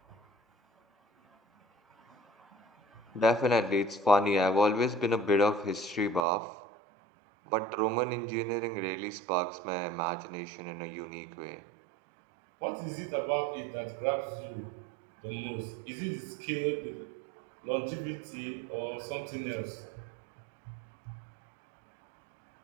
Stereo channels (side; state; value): left; drops out; at 6.2 s